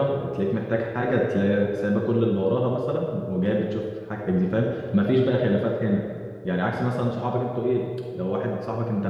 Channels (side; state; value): both; identical; correlation 1.00